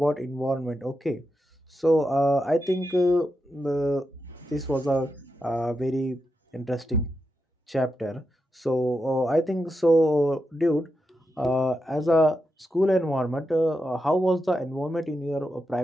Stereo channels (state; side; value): normal; both; correlation 0.87